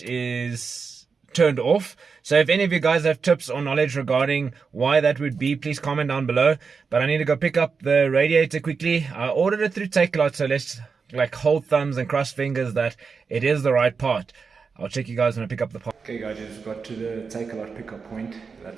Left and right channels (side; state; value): left; quieter; 5.2 dB